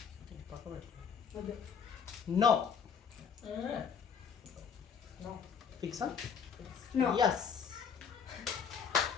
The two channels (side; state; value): right; quieter; 6.7 dB